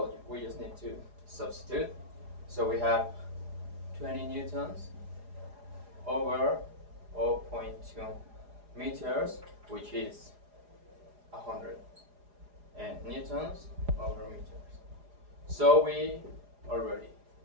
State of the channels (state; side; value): late; left; 4.9 ms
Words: we just need to substitute. So we have 20 newtons over 0.2 meters, which is 100 newtons over meters. So we